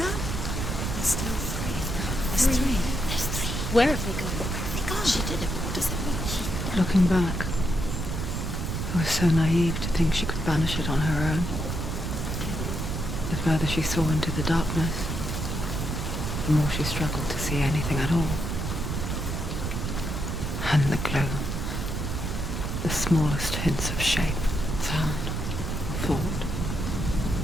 There's still three. There's three. There's three. Where have they gone? Where have they gone? She did it, but what does it mean? Looking back, I was so naive to think she could banish it on her own. The further she saw into the darkness, the more she struggled to see anything at all. And the gloom, the smallest hints of shape, sound, thought,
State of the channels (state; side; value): noise; right; rumble, 2 dB below the sound